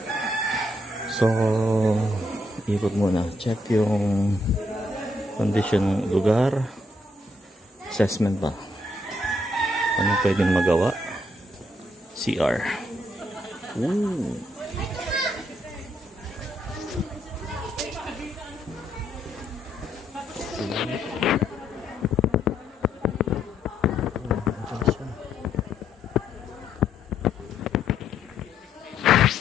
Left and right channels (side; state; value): both; normal; correlation 0.74